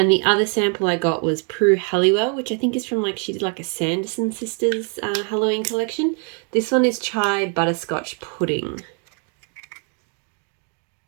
the other sample I got was Prue Halliwell, which I think is from she did like a Sanderson Sisters Halloween collection. This one is Chai Butterscotch Pudding.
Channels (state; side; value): quieter; left; 39.7 dB